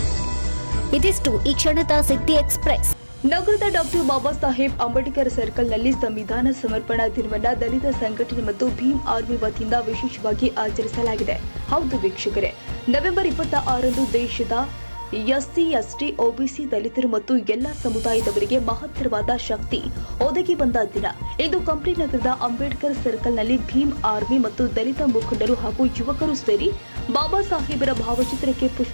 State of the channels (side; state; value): both; inverted; correlation -1.00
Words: ಇದಿಷ್ಟು ಈ ಕ್ಷಣದ ಸಿದ್ದಿ ಎಕ್ಸ್‌ಪ್ರೆಸ್. ನಗರದ ಡಾಕ್ಟರ್ ಬಾಬಾ ಸಾಹೇಬ್ ಅಂಬೇಡ್ಕರ್ ಸರ್ಕಲ್ನಲ್ಲಿ ಸಂವಿಧಾನ ಸಮರ್ಪಣಾ ದಿನವನ್ನು ದಲಿತ ಸಂಘಟನೆ ಮತ್ತು ಭೀಮ್ ಆರ್ಮಿ ವತಿಯಿಂದ ವಿಶೇಷವಾಗಿ ಆಚರಿಸಲಾಗಿದೆ. ಹೌದು ವೀಕ್ಷಕರೇ, ನವೆಂಬರ್ 26ರಂದು ದೇಶದ ಎಸ್ಸಿ, ಎಸ್ಟಿ, ಒಬಿಸಿ, ದಲಿತರು ಮತ್ತು ಎಲ್ಲ ಸಮುದಾಯದವರಿಗೆ ಮಹತ್ತರವಾದ ಶಕ್ತಿ ಒದಗಿ ಬಂದ ದಿನ. ಇಂದು ಕಂಪ್ಲಿ ನಗರದ ಅಂಬೇಡ್ಕರ್ ಸರ್ಕಲ್ನಲ್ಲಿ ಭೀಮ್ ಆರ್ಮಿ ಮತ್ತು ದಲಿತ ಮುಖಂಡರು ಹಾಗೂ ಯುವಕರು ಸೇರಿ ಬಾಬಾ ಸಾಹೇಬರ ಭಾವಚಿತ್ರಕ್ಕೆ